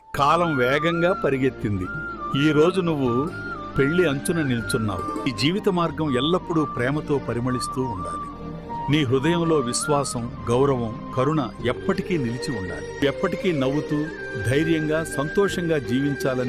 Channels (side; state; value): both; identical; correlation 1.00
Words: కాలం వేగంగా పరిగెత్తింది. ఈ రోజు నువ్వు పెళ్లి అంచున నిల్చున్నావు. ఈ జీవిత మార్గం ఎల్లప్పుడూ ప్రేమతో పరిమళిస్తూ ఉండాలి. నీ హృదయంలో విశ్వాసం, గౌరవం, కరుణ ఎప్పటికీ నిలిచి ఉండాలి. ఎప్పటికీ నవ్వుతూ ధైర్యంగా సంతోషంగా